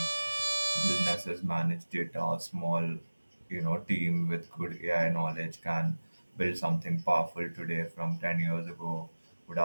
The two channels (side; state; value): both; inverted; correlation -1.00